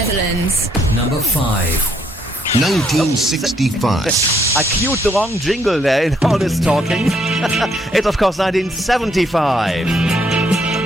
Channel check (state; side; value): normal; both; correlation 0.71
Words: Number 5. 1965. I queued the wrong jingle there in all this talking. It's of course 1975.